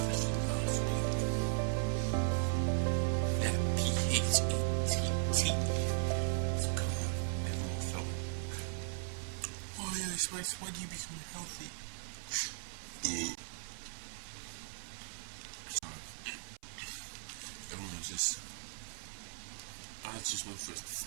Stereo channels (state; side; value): silent; left; 53 dB below the other